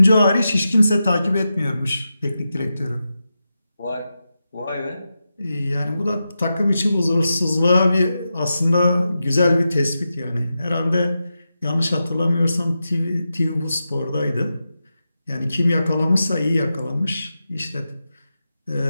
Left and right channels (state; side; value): inverted; both; correlation -0.90